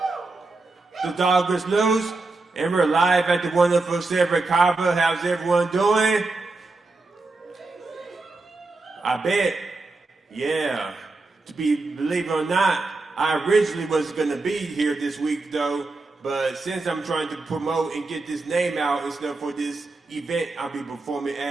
The dog is loose, and we're live at the wonderful Silver Kava. How's everyone doing? I bet. Yeah. Believe it or not, I originally was gonna be here this week though, but since I'm trying to promote and get this name out and stuff for this event I'll be performing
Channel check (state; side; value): quieter; left; 3.4 dB